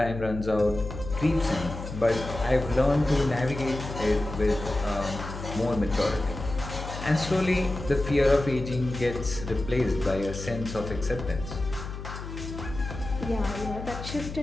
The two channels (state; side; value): noise; left; hum, 9 dB below the sound